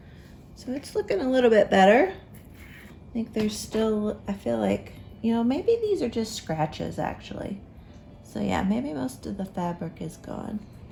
So it's looking a little bit better. I think there's still, I feel like, you know, maybe these are just scratches actually. So yeah, maybe most of the fabric is gone.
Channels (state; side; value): identical; both; correlation 1.00